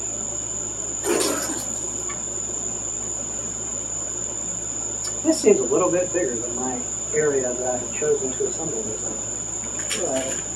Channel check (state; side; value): identical; both; correlation 1.00